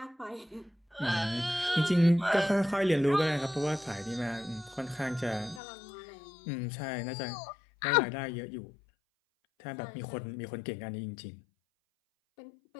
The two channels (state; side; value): drops out; right; at 5.6 s